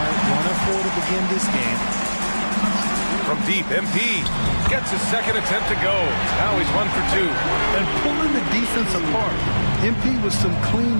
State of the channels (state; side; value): inverted; both; correlation -1.00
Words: 1 of 4 to begin this game. From deep, MP gets his second attempt to go. Now he's 1 for 2. And pulling the defense apart. MP with some clean